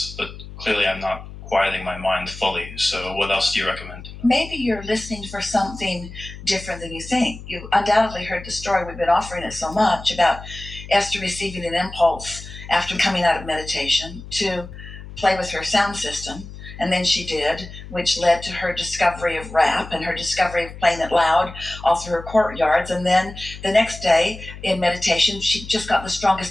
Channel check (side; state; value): left; noise; hum, 14 dB below the sound